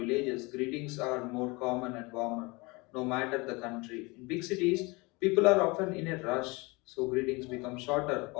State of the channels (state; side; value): quieter; right; 25.7 dB